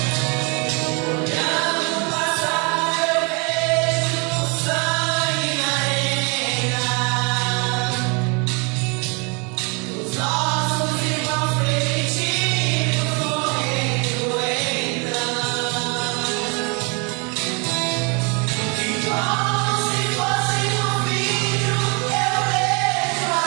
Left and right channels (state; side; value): quieter; left; 32.6 dB